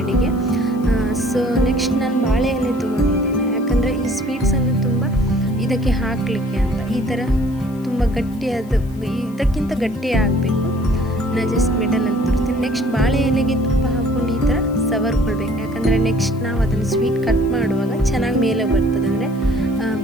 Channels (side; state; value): left; noise; hiss, 27 dB below the sound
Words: ಸೊ ನೆಕ್ಸ್ಟ್ ನಾನು ಬಾಳೆ ಎಲೆ ತೊಗೊಂಡಿದ್ದೇನೆ, ಯಾಕಂದರೆ ಈ ಸ್ವೀಟ್ಸನ್ನು ತುಂಬ ಇದಕ್ಕೆ ಹಾಕಲಿಕ್ಕೆ ಅಂತ. ಈ ಥರ ತುಂಬ ಗಟ್ಟಿಯಾದ, ಇದಕ್ಕಿಂತ ಗಟ್ಟಿ ಆಗಬೇಕು. ನಾನು ಜಸ್ಟ್ ಮಿಡಲಲ್ಲಿ ತೋರಿಸ್ತೀನಿ. ನೆಕ್ಸ್ಟ್ ಬಾಳೆ ಎಲೆಗೆ ತುಪ್ಪ ಹಾಕ್ಕೊಂಡು ಈ ಥರ ಸವರ್ಕೊಳ್ಬೇಕು, ಯಾಕಂದರೆ ನೆಕ್ಸ್ಟ್ ನಾವು ಅದನ್ನು ಸ್ವೀಟ್ ಕಟ್ ಮಾಡುವಾಗ ಚೆನ್ನಾಗಿ ಮೇಲೆ ಬರ್ತದೆ, ಅಂದರೆ